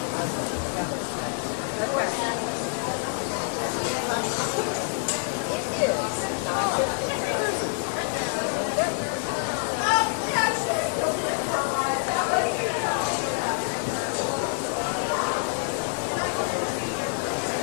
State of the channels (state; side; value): silent; right; 55 dB below the other